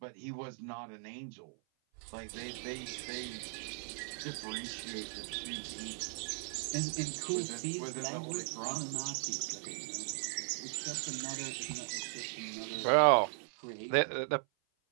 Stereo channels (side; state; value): left; silent; 53 dB below the other